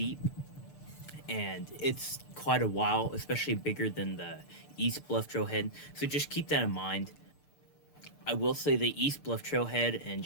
and it's quite a while, especially bigger than the East Bluff Trailhead, so just keep that in mind. I will say the East Bluff Trailhead and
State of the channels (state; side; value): late; right; 6.7 ms